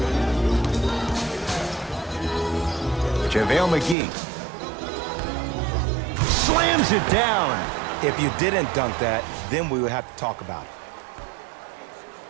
JaVale McGee. Slams it down. If you didn't dunk that, then we would have to talk about it.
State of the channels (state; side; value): drops out; left; at 4.0 s